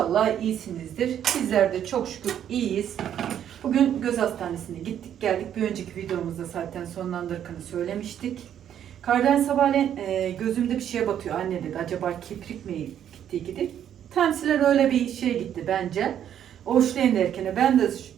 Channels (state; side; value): quieter; left; 9.9 dB